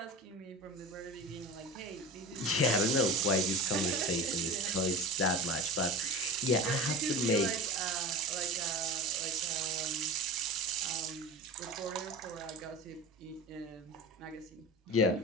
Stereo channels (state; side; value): normal; both; correlation 0.31